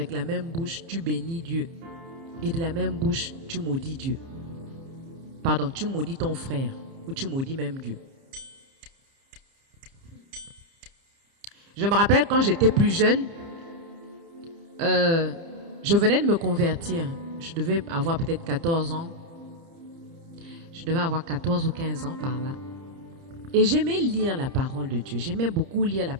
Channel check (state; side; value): late; left; 30 ms